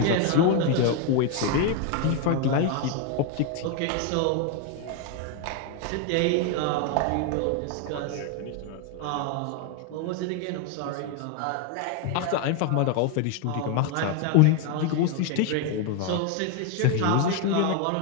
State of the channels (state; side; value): different; both; correlation 0.01